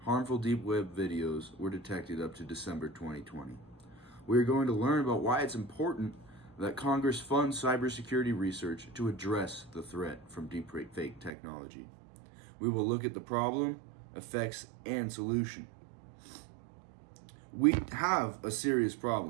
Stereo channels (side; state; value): left; drops out; at 11.3 s